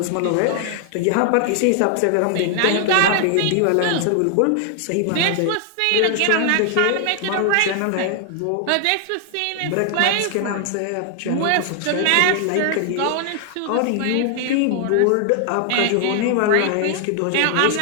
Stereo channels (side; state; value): both; different; correlation 0.00